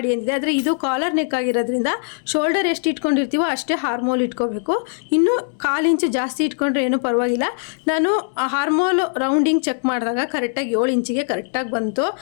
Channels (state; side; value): silent; right; 65 dB below the other